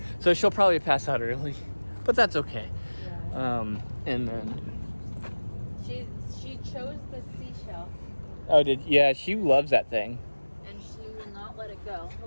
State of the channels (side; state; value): both; inverted; correlation -1.00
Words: So she'll probably pass out early, but that's okay. Yeah. And then. She chose the seashell Oh, she loves that thing. and she will not let it go.